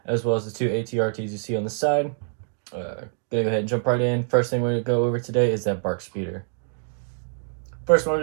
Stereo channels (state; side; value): silent; left; digital silence